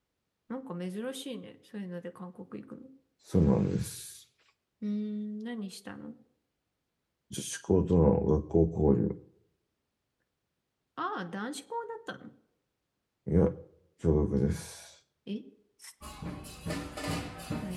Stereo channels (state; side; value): identical; both; correlation 1.00